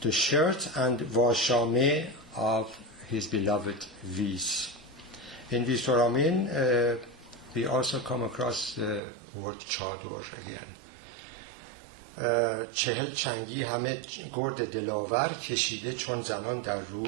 the shirt and washame of his beloved Vis. In Visoramin, we also come across the word chador again. 40 چنگی همه گرد دلاور کشیده چون زنان در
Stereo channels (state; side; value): drops out; left; at 9.0 s